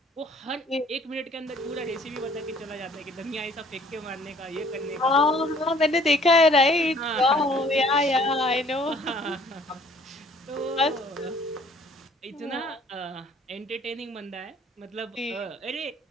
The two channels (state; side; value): normal; both; correlation 0.57